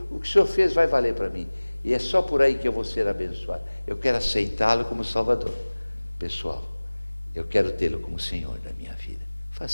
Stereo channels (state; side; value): inverted; both; correlation -1.00